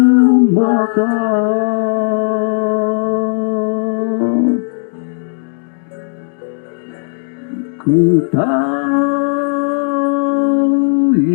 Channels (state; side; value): silent; right; digital silence